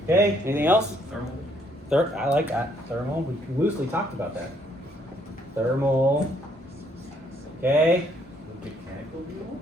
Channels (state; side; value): normal; both; correlation 0.68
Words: Okay, anything else? Thermal. I like that. Thermal, we loosely talked about that. Thermal. Okay. Mechanical